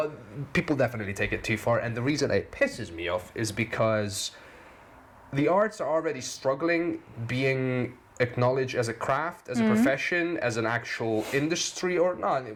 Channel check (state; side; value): identical; both; correlation 1.00